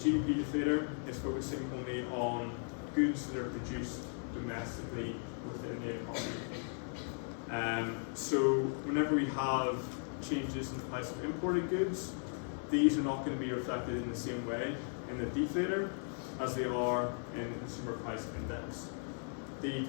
deflator is focusing only on goods that are produced domestically within the economy. So whenever we have changes in the price of imported goods, these are not going to be reflected in the same way in the deflator as they are in the consumer price index. The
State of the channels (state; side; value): silent; right; 53 dB below the other